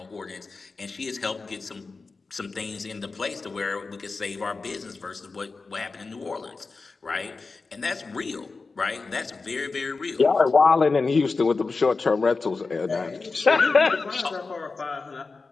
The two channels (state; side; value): quieter; right; 4.1 dB